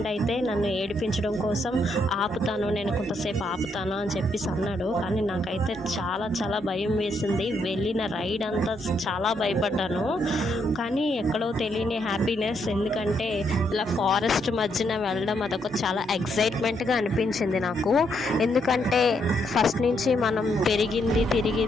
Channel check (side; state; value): both; normal; correlation 0.76